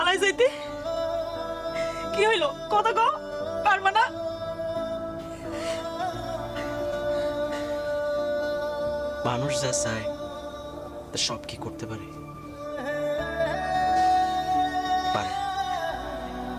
যাইতে? কি হইলো কথা কও, পারবা না? মানুষ যা চায় তা সব কি করতে পারে? পারে।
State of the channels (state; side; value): identical; both; correlation 1.00